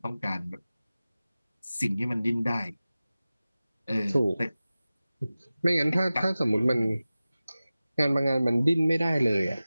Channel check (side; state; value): both; inverted; correlation -0.96